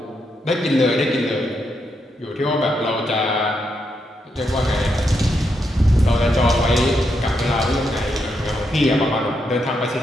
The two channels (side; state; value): both; normal; correlation 0.81